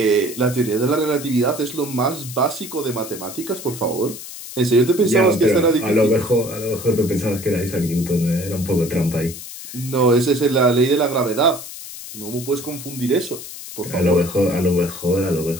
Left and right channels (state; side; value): noise; left; hiss, 12 dB below the sound